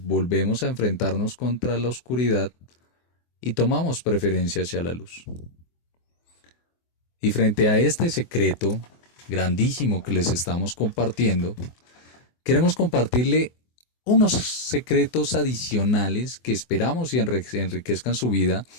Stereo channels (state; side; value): late; right; 24 ms